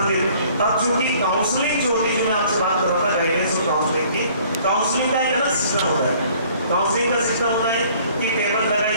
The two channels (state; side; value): inverted; both; correlation -0.56